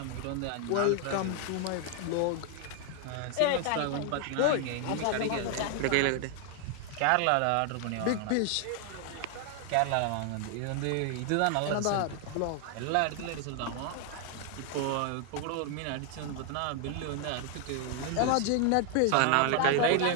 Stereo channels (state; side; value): different; both; correlation 0.00